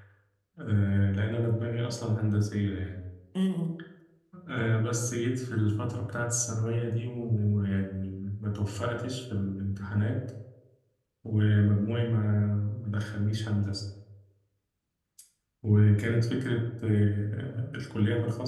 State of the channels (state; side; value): identical; both; correlation 1.00